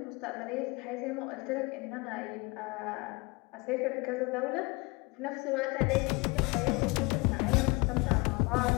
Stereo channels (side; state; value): right; quieter; 26.5 dB